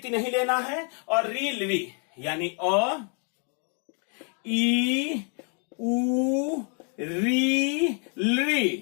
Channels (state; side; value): quieter; right; 39.8 dB